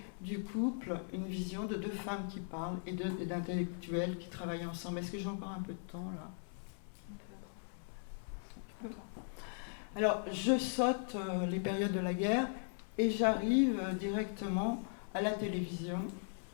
du couple une vision de deux femmes qui parlent et d'intellectuels qui travaillent ensemble. Est-ce que j'ai encore un peu de temps là ? Alors, je saute les périodes de la guerre et j'arrive directement à la télévision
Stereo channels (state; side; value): silent; right; 52 dB below the other